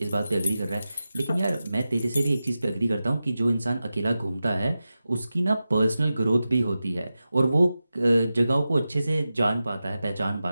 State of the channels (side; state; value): both; inverted; correlation -0.93